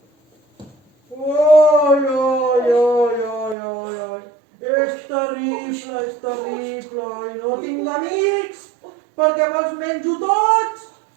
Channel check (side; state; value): left; drops out; at 3.6 s